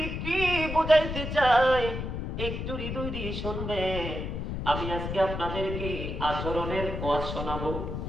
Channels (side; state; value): left; noise; rumble, 5 dB below the sound